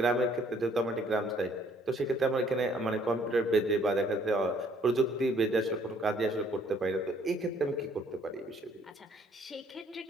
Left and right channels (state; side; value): normal; both; correlation 0.62